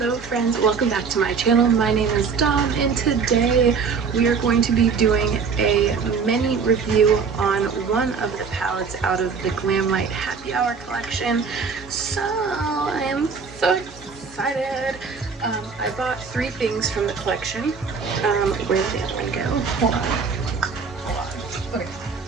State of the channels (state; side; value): quieter; left; 5.5 dB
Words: friends, welcome back to my channel. My name is Dom and today we are going to be doing a mini review on one of the palettes out of the Glamlite Happy Hour collection. So I am so excited. I bought 3 things from the collection. Where did the other one go? Hold on. Okay,